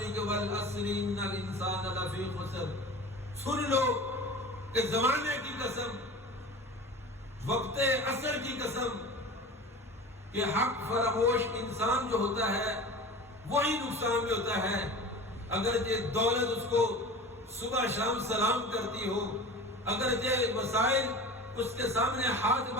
کہ والعصر ان الانسان لفی خسر، سن لو کہ زمانے کی قسم، وقت عصر کی قسم، کہ حق فراموش انسان جو ہوتا ہے وہی نقصان میں ہوتا ہے۔ اگرچہ دولت اس کو صبح شام سلام کرتی ہو، اگرچہ وسائل اس کے سامنے ہاتھ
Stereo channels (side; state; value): both; normal; correlation 0.36